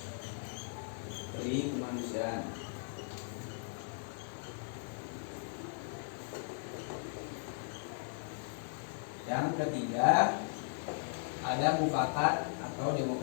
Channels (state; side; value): silent; right; digital silence